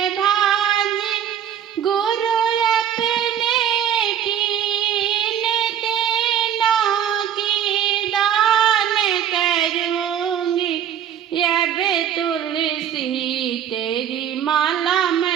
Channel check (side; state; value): left; quieter; 9.5 dB